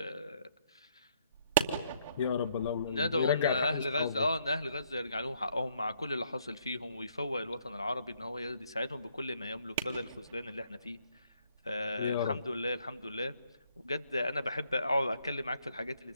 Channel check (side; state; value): both; inverted; correlation -0.69